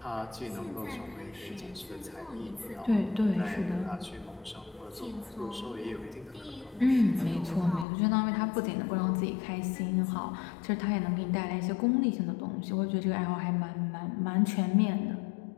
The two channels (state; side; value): drops out; right; at 7.9 s